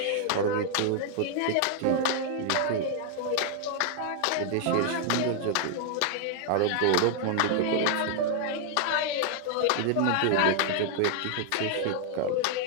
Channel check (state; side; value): different; both; correlation 0.00